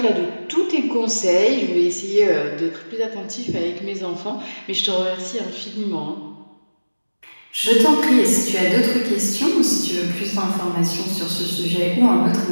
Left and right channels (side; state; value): both; inverted; correlation -1.00